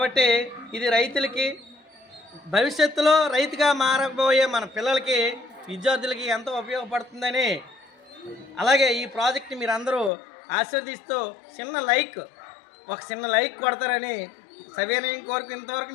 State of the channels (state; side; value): drops out; right; at 10.1 s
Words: ఇది రైతులకి, భవిష్యత్తులో రైతుగా మారబోయే మన పిల్లలకి, విద్యార్థులకి ఎంతో ఉపయోగపడుతుందని, అలాగే ఈ ప్రాజెక్ట్ని మీరు అందరూ ఆశీర్వదిస్తూ ఒక చిన్న లైక్ కొడతారని సవినయం కోరిక. ఇంతవరకు